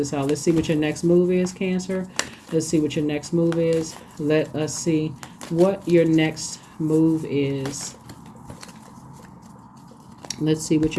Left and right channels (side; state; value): both; identical; correlation 1.00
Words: out. Let's see what your next move is, Cancer. Let's see what your next move is. Let us see what your next move is. Let's see what